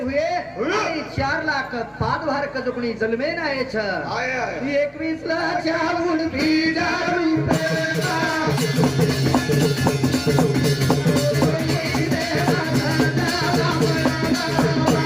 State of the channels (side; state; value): both; identical; correlation 1.00